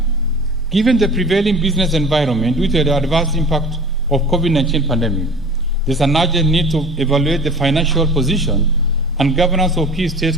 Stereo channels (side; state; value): both; normal; correlation 0.41